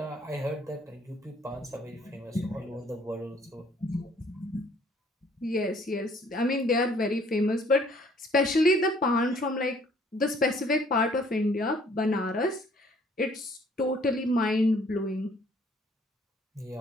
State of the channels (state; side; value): normal; both; correlation 0.60